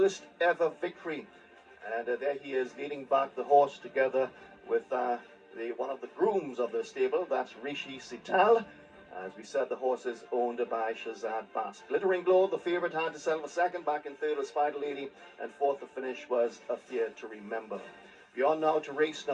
ever victory. And there he is leading back the horse together with one of the grooms of the stable. That's Rishi Sital. As we said, the horse is owned by Shazad Bast. Glittering Glow, the favourite, had to settle for second. Back in third was Spider Lady, and fourth to finish was Affair to Remember. We are now to race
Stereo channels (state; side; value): identical; both; correlation 1.00